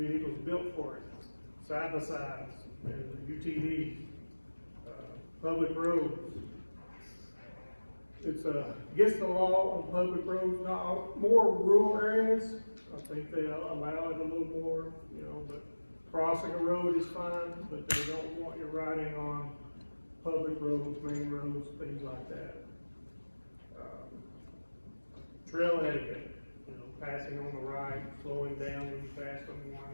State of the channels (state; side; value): inverted; both; correlation -1.00